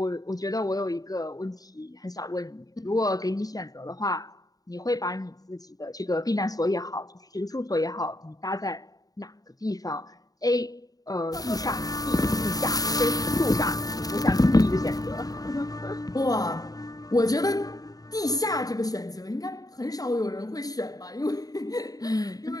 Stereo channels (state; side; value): late; right; 0.18 ms